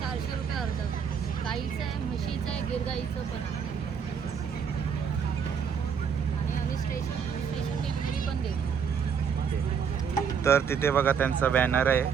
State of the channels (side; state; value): left; quieter; 7.0 dB